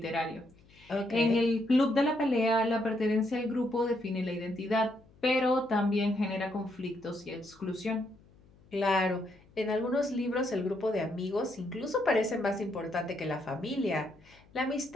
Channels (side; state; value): left; noise; hum, 27 dB below the sound